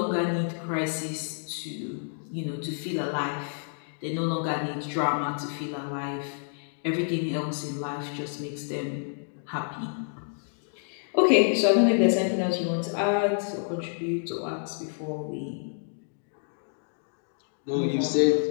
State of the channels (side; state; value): right; silent; digital silence